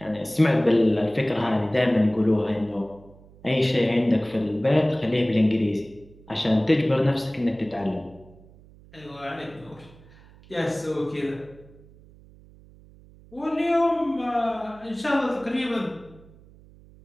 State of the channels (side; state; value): right; noise; hum, 24 dB below the sound